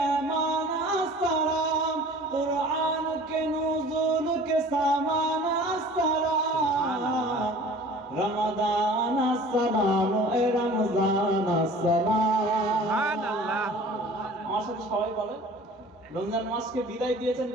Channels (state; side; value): normal; both; correlation 0.46